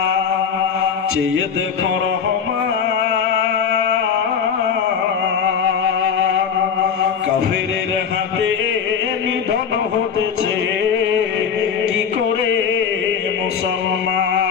চেয়ে দেখো রহমান। কাফেরের হাতে নিধন হতেছে কি করে মুসলমান।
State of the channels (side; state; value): right; quieter; 7.0 dB